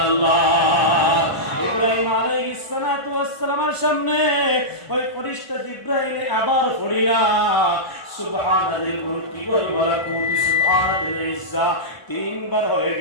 ইব্রাহিম আলাইহিস সালাতু ওয়াস সালামের সামনে ওই ফেরেশতা জিবরাইল আবার পড়িলা সুবহানাল মুলকি ওয়াল মালাকুতি সুবহানাল ইজ্জা, তিনবার হয়ে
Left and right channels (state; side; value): late; right; 1.0 ms